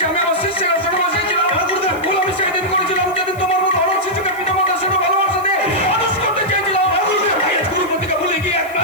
আমি আমার শিষ্যের আসনে বসেছিলাম। ভুল আমি সেদিন করেছিলাম যেদিন তোমার মতো আমার শিশুকে পিতামাতার সাথে ভালোবাসা দিয়ে মানুষ করতে চেয়েছিলাম। গুরু প্রতিকা ভুলে গিয়ে এক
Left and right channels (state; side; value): noise; right; hiss, 22 dB below the sound